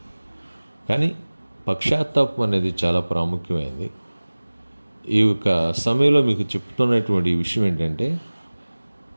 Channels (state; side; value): inverted; both; correlation -1.00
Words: కానీ పశ్చాత్తాపం అనేది చాలా ప్రాముఖ్యమైనది. ఈ యొక్క సమయంలో మీకు చెప్తున్నటువంటి ఈ విషయం ఏంటంటే,